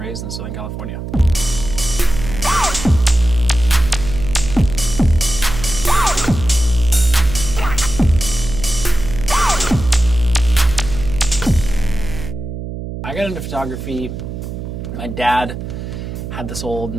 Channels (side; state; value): right; noise; hum, 8 dB below the sound